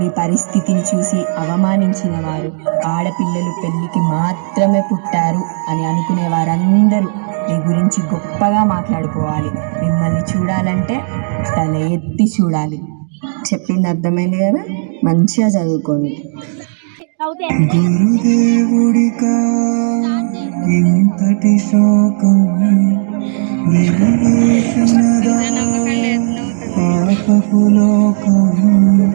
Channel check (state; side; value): silent; left; digital silence